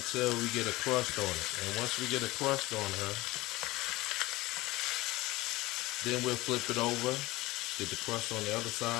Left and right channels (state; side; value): quieter; right; 19.6 dB